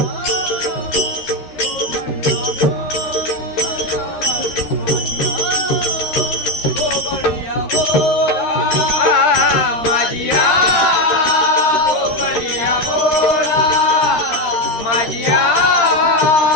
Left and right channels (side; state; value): right; late; 13 ms